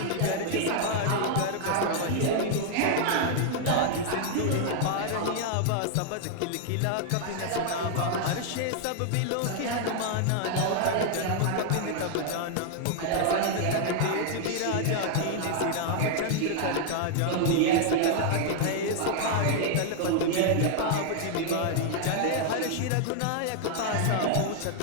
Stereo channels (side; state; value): both; different; correlation 0.00